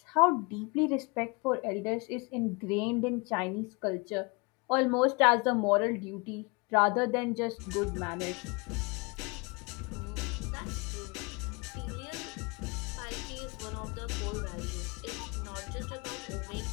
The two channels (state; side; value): quieter; right; 28.7 dB